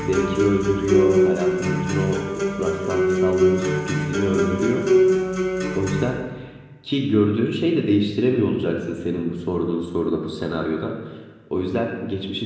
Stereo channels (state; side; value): identical; both; correlation 1.00